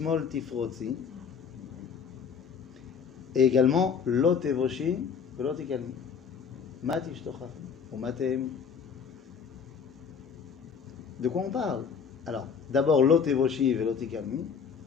Tifrotzi, et également Lot Evoshi, Lot Ikalmi, Mat Ishtochach, ou Matem. De quoi on parle? Alors, d'abord Lot Evoshi et Lot Ikalmi.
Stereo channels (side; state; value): right; quieter; 6.5 dB